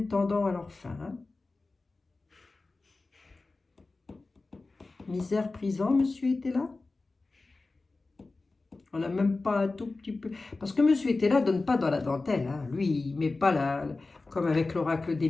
tendant à leur fin. Hein. Misère, prison, monsieur était là? On n'a même pas un tout petit peu... Parce que monsieur était là, donne pas dans la dentelle. Hein. Lui, il met pas comme avec l'oracle des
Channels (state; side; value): quieter; right; 3.5 dB